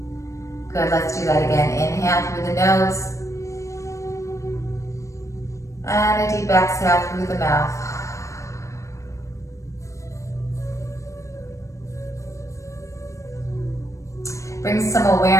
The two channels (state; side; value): late; right; 0.15 ms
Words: Good, let's do that again. Inhale through the nose. And a deep exhale through the mouth. Bring some